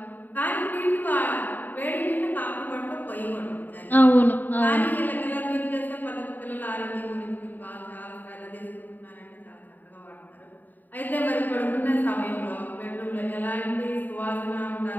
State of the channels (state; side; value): late; right; 0.088 ms